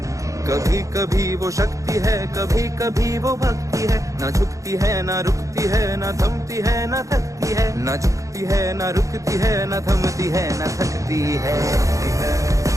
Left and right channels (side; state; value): left; late; 0.16 ms